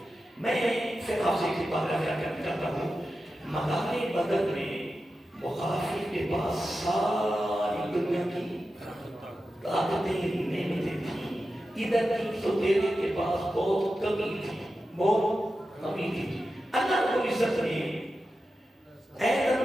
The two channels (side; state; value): both; normal; correlation 0.92